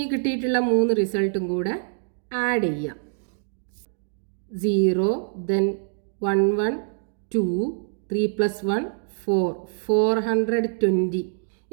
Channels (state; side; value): silent; left; digital silence